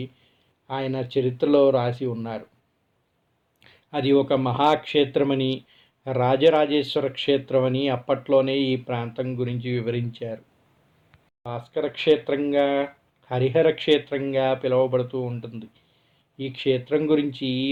ఆయన చరిత్రలో రాసి ఉన్నారు. అది ఒక మహాక్షేత్రమని, రాజరాజేశ్వర క్షేత్రం అని అప్పట్లోనే ఈ ప్రాంతం గురించి వివరించారు. భాస్కర క్షేత్రంగా, హరిహర క్షేత్రంగా పిలువబడుతూ ఉంటుంది. ఈ క్షేత్రం గురించి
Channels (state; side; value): identical; both; correlation 1.00